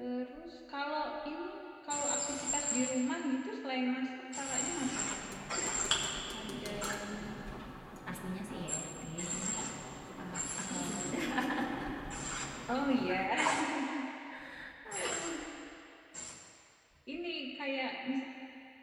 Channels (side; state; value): both; identical; correlation 1.00